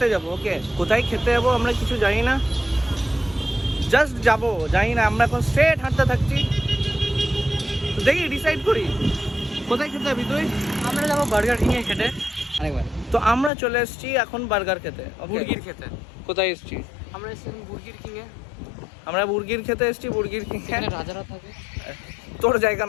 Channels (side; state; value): right; drops out; at 13.5 s